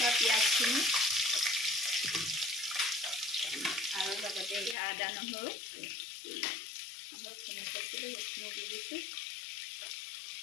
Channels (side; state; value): right; drops out; at 4.8 s